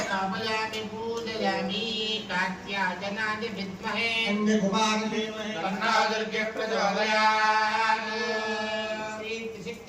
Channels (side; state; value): both; identical; correlation 1.00